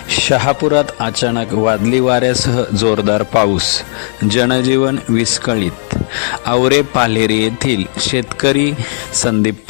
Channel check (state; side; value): silent; right; digital silence